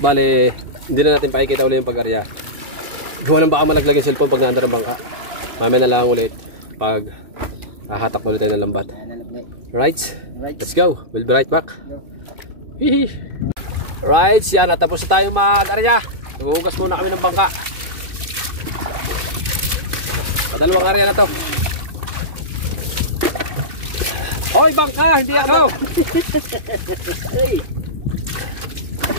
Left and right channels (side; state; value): left; late; 2.5 ms